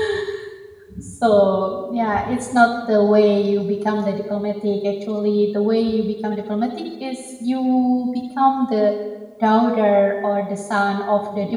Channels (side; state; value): both; identical; correlation 1.00